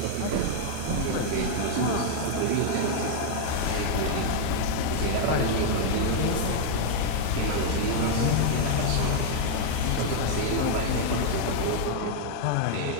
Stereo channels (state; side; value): different; both; correlation 0.00